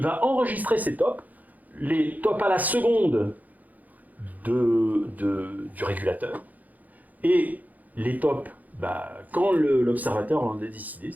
va enregistrer ces tops, les tops à la seconde du régulateur, et les tops, quand l'observateur en a décidé,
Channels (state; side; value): late; left; 0.080 ms